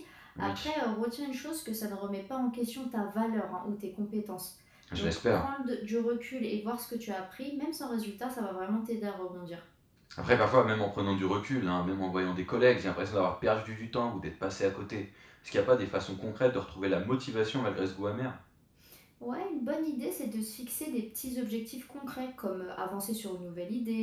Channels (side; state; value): both; identical; correlation 1.00